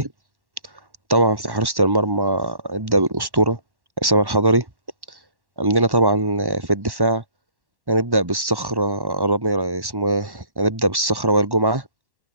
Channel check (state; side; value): late; left; 1.1 ms